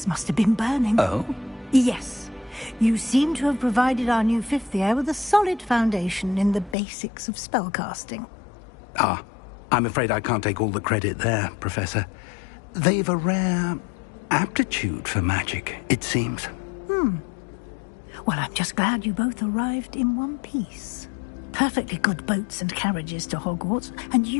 must have been burning. Oh? Yes. You seem to have provided our new fifth year with a solid foundation in the basics of spellcasting. Ah, I'm afraid I can't take all the credit there, Professor. They've a rare aptitude for magic, it seems. Well, I'm just glad you both arrived in one piece. Perfectly good boats and carriages to Hogwarts, and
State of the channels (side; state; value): right; drops out; at 6.8 s